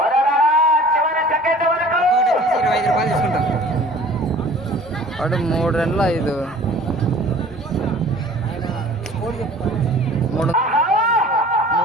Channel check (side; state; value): both; normal; correlation 0.47